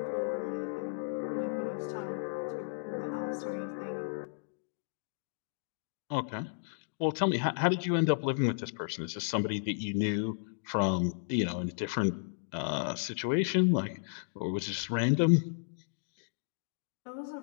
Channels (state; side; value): silent; right; digital silence